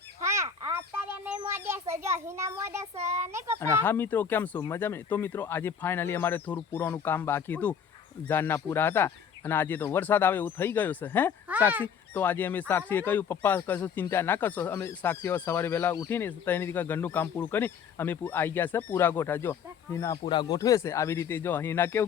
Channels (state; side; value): quieter; right; 7.2 dB